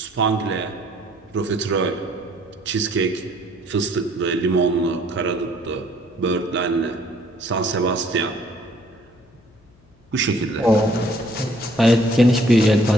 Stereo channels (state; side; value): noise; left; hum, 30 dB below the sound